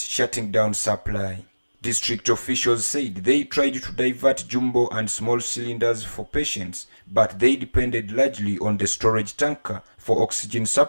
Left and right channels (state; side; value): inverted; both; correlation -1.00